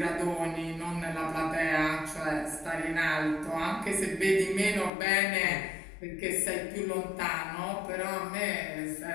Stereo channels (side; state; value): right; drops out; at 4.9 s